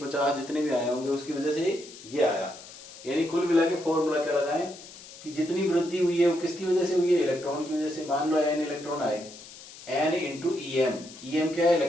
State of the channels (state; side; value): noise; left; hiss, 17 dB below the sound